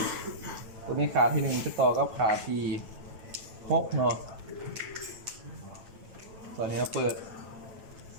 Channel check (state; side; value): late; left; 9.0 ms